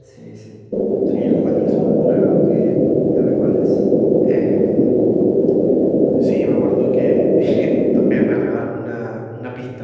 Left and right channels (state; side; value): identical; both; correlation 1.00